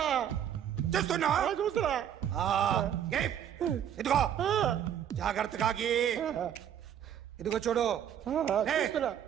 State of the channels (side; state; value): left; quieter; 9.6 dB